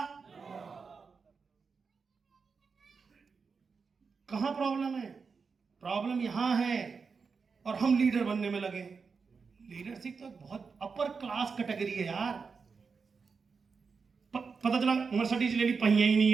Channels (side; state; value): left; quieter; 5.2 dB